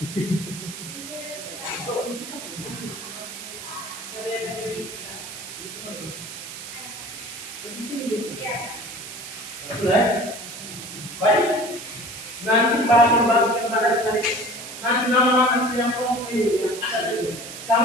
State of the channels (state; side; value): noise; right; hiss, 10 dB below the sound